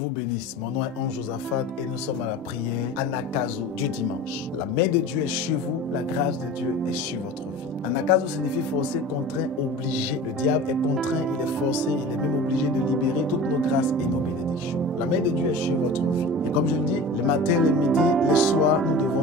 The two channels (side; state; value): both; normal; correlation 0.36